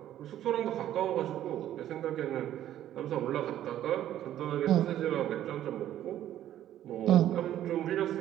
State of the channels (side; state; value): left; quieter; 12.1 dB